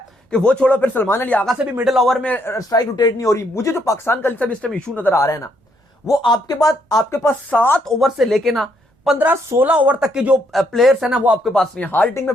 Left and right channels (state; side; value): normal; both; correlation 0.72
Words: कि वो छोड़ो, फिर सलमान अली आगा से भी मिडिल ओवर में स्ट्राइक रोटेट नहीं हो रही। मुझे जो पाकिस्तान का इस टाइम इशू नजर आ रहा है ना, वो आपके पास 7 ओवर से लेके ना 15-16 ओवर तक के जो प्लेयर्स है ना, वो आपके पास नहीं है। हार्ड हिटिंग में